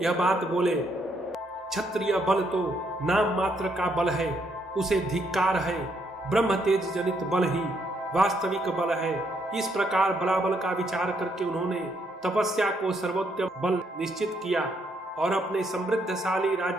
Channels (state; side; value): normal; both; correlation 0.73